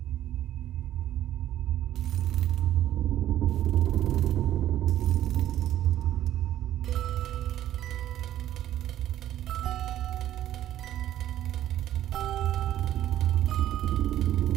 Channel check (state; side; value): quieter; left; 12.4 dB